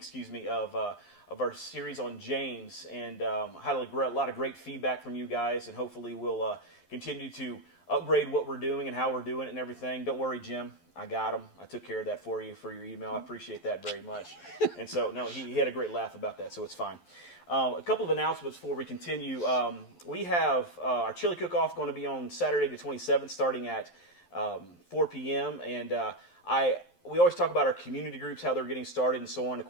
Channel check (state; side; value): late; right; 11 ms